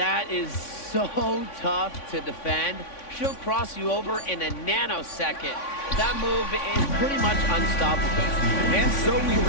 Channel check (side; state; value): right; late; 3.5 ms